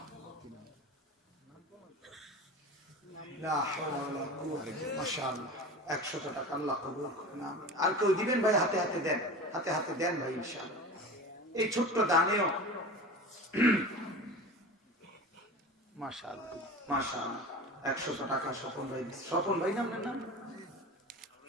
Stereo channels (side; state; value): both; normal; correlation 0.32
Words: লা হাওলা ওয়ালা কুওয়াতা। মাশাআল্লাহ, 100 টাকা আল্লাহ কবুল করুন, আমিন। আর কেউ দিবেন ভাই? হাতে হাতে দেন, হাতে হাতে দেন ভাই, ইনশাআল্লাহ। এই ছোট্ট দানেও মাশাআল্লাহ মাশাআল্লাহ 100 টাকা স্বপন ভাই, স্বপন ভাই নাম নাম